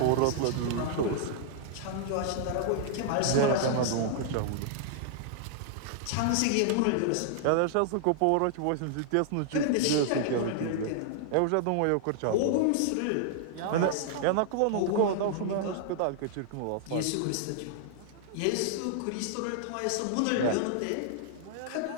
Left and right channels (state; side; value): different; both; correlation -0.01